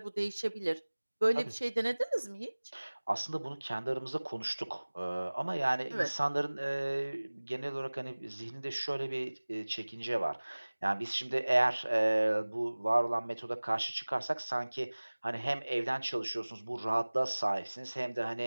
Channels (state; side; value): inverted; both; correlation -1.00